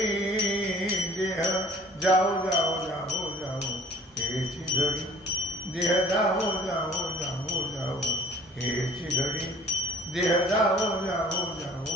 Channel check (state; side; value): normal; both; correlation 0.51